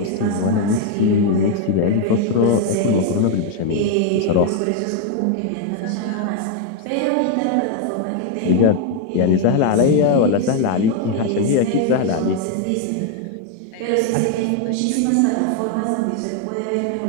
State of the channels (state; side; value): different; both; correlation 0.01